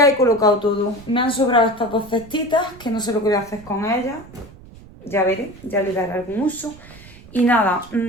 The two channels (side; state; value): right; noise; rumble, 20 dB below the sound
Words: he colocado todo. Me han sobrado estas dos cestitas, que no sé lo que voy a hacer con ellas. Ya veré, ya le daré algún uso. Y nada,